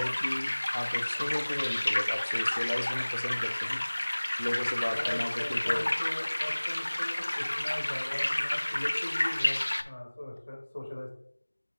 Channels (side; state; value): both; inverted; correlation -1.00